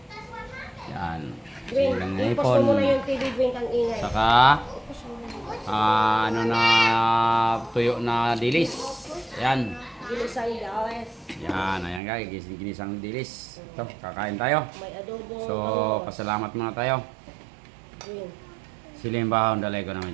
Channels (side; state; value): left; drops out; at 12.0 s